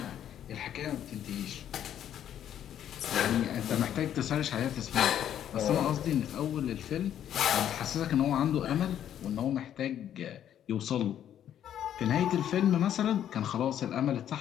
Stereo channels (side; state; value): right; quieter; 10.3 dB